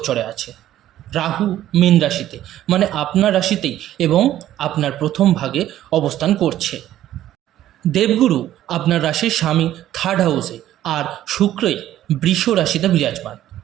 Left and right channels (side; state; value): left; quieter; 12.8 dB